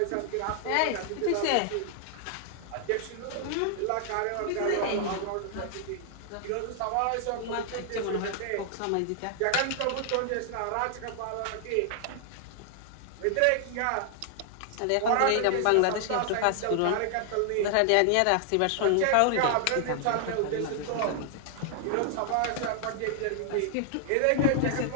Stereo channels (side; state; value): both; different; correlation 0.00